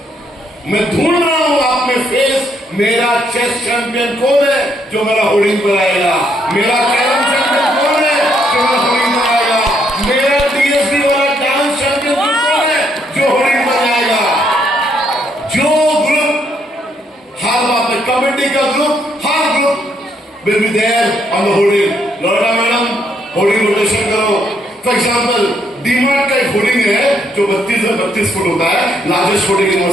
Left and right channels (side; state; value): both; normal; correlation 0.73